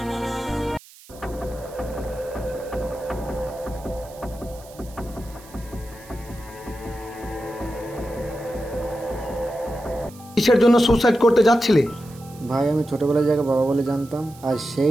কিসের জন্য সুসাইড করতে যাচ্ছিলে? ভাই আমি ছোটবেলায় যাকে বাবা বলে জানতাম, আর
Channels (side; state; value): right; noise; hiss, 22 dB below the sound